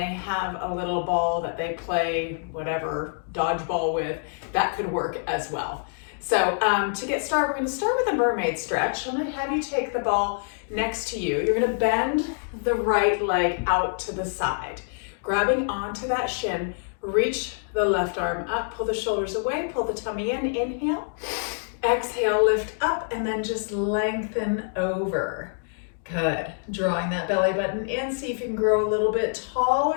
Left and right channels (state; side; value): silent; right; digital silence